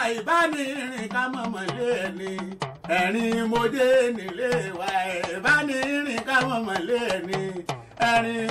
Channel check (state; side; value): identical; both; correlation 1.00